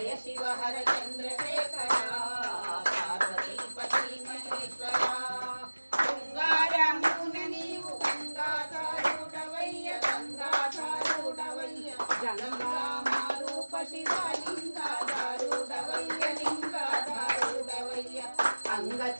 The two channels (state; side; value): inverted; both; correlation -1.00